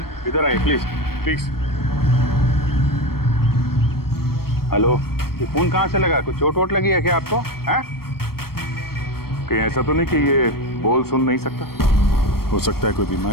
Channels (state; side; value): late; right; 0.94 ms